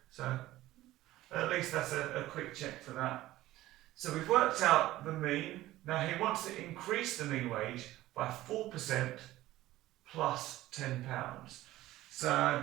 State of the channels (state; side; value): quieter; left; 16.0 dB